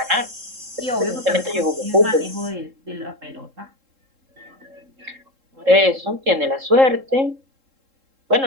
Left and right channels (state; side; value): late; left; 3.7 ms